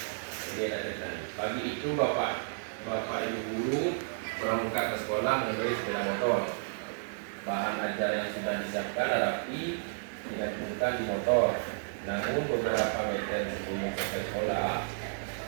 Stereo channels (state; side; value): silent; left; 56 dB below the other